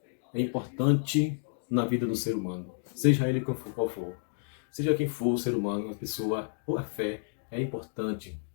é importante na vida do ser humano, seja ele qual for. Seja quem for o ser humano, a pessoa ou a fé é importante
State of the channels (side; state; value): right; silent; digital silence